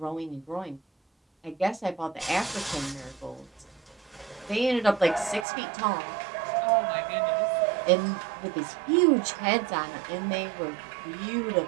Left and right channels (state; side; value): drops out; left; at 5.5 s